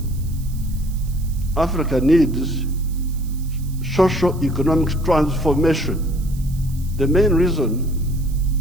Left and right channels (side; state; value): right; noise; hiss, 21 dB below the sound